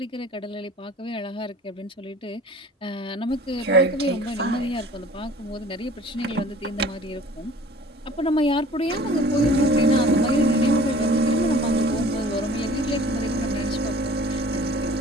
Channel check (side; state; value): both; normal; correlation 0.48